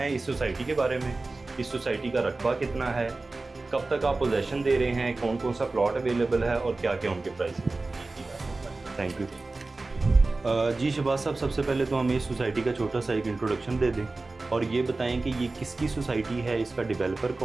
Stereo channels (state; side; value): quieter; left; 3.4 dB